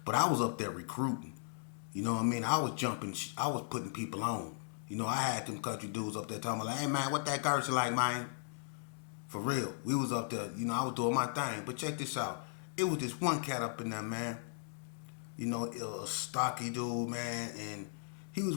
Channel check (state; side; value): silent; right; digital silence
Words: but I was up there recruiting. You know what I mean? I was jumping, I was putting people on. I had them country dudes up there talking about, like, hey man, what that Gertz like, man? For real. We was up there, I was doing my thing. But check this out. It was this one cat up in there, man. A stocky dude, man, and he was